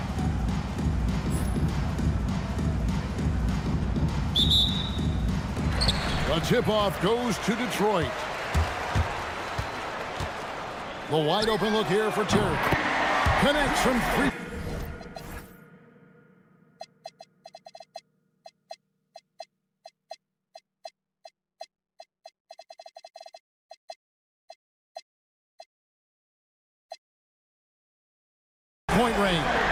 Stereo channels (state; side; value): identical; both; correlation 1.00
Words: The tip-off goes to Detroit. The wide open look here for Terry. Connects from three. Point range.